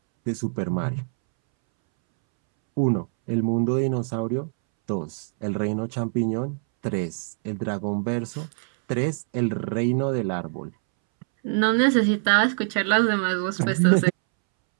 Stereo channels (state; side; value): silent; left; 62 dB below the other